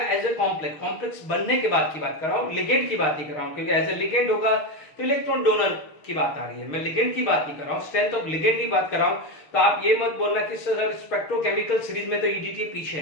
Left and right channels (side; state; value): right; late; 6.5 ms